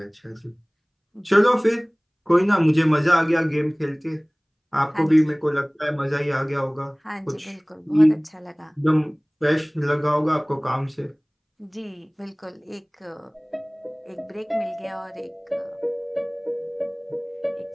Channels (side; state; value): both; identical; correlation 1.00